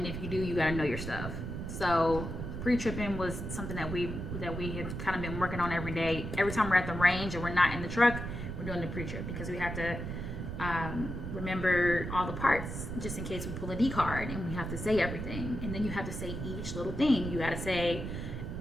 if you do, you gotta know your stuff. So pre-tripping was something that we had kind of been working on every day. Every time we're at the range and we're not in the truck, we're doing the pre-trip, because we have to remember all the parts just in case we pull a D card, and we have to say everything. And then you have to say each little thing. You gotta say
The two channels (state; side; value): noise; right; rumble, 5 dB below the sound